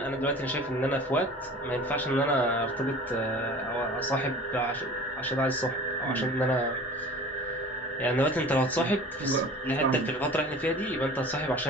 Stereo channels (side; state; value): both; normal; correlation 0.42